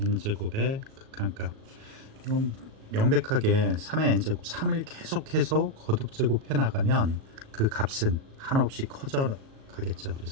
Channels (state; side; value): late; left; 37 ms